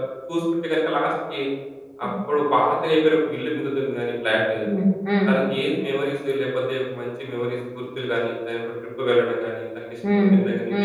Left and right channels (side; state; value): both; identical; correlation 1.00